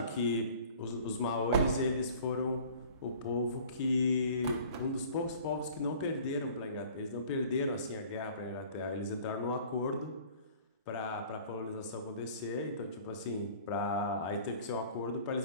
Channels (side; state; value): both; inverted; correlation -0.49